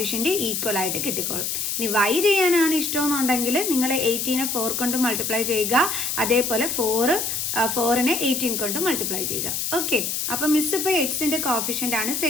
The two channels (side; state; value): left; noise; hiss, 1 dB below the sound